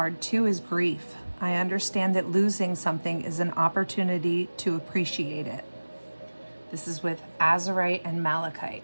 two is Grief. I understand that losing something is an opportunity to appreciate it. This is with Azurite and malachite.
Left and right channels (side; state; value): both; inverted; correlation -1.00